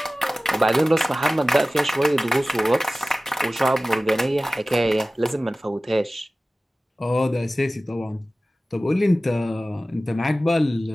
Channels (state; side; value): normal; both; correlation 0.97